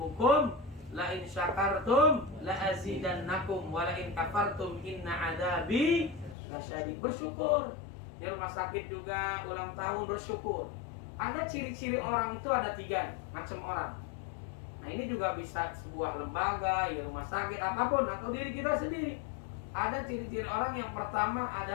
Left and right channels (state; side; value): drops out; right; at 6.4 s